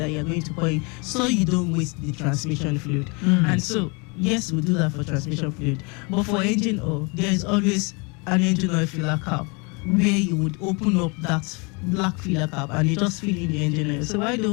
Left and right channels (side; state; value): right; quieter; 30.8 dB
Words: you're going to put in so you don't waste the transmission fluid. And so, yes, we do that for transmission fluid. But for engine oil, there is always an engine oil filler cap where you would open up that black filler cap and you just fill in the engine oil. So why do